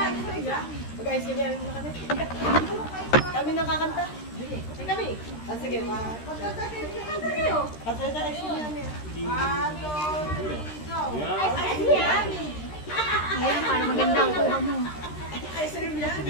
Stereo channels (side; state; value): right; late; 13 ms